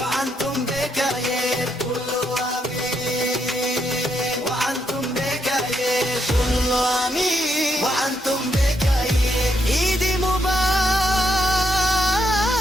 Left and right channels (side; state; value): both; normal; correlation 0.78